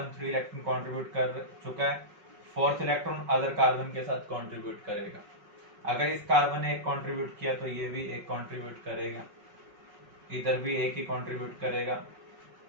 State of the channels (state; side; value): late; left; 5.4 ms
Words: 3 इलेक्ट्रॉन कंट्रीब्यूट कर चुका है, 4th इलेक्ट्रॉन अदर कार्बन के साथ कंट्रीब्यूट करेगा। अगर इस कार्बन ने 1 कंट्रीब्यूट किया तो ये भी 1 कंट्रीब्यूट करेगा, इधर भी 1 ही कंट्रीब्यूट करेगा,